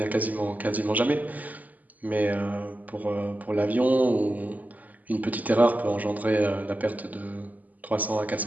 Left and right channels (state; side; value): late; left; 0.079 ms